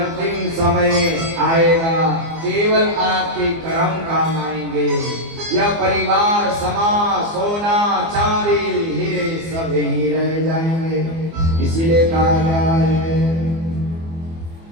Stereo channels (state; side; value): late; left; 24 ms